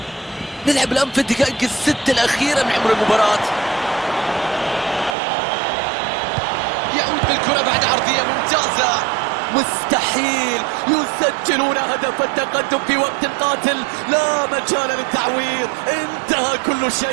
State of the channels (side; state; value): left; drops out; at 5.2 s